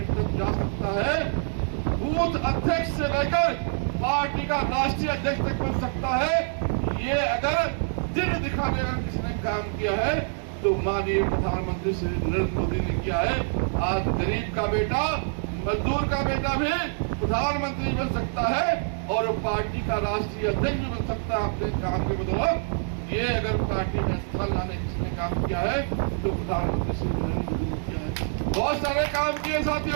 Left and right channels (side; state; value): left; silent; digital silence